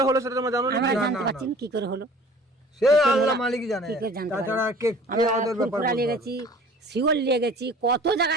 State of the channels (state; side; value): normal; both; correlation 0.47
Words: হলো সেটা তোমরা জানো না? আমরা জানতে পারছি না কি করে হলো, সে আল্লাহ মালিক জানে, কি করে জানতে তাছাড়া পারি। কে আমরা ওদের ব্যাপার ফুরফুরা বলতে নিয়ে পারবে। গেছি, শিওর নিয়ে গেছি, কত জায়গা